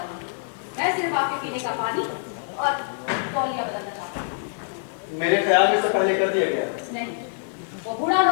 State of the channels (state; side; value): silent; right; digital silence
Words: मैं सिर्फ आपके पीने का पानी और तौलिया बदलना चाहता हूँ। मेरे ख्याल में इससे पहले कर दिया गया है। नहीं, वो बूढ़ा